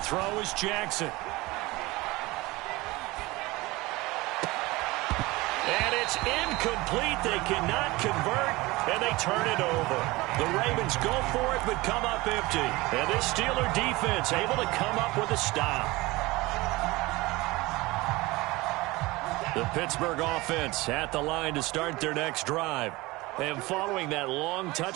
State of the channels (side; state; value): left; quieter; 21.3 dB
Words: throw is Jackson. And it's incomplete. They cannot convert, and they turn it over. The Ravens go for it, but come up empty. And this Steeler defense able to come up with a stop. The Pittsburgh offense at the line to start their next drive. And following that long